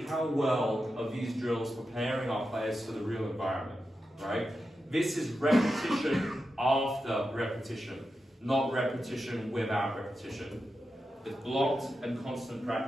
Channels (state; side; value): normal; both; correlation 0.89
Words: how well are these drills preparing our players for the real environment, right? This is repetition after repetition, not repetition without repetition. It's blocked and constant